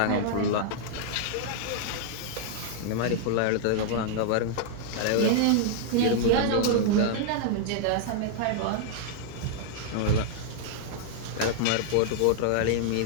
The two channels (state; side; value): different; both; correlation -0.01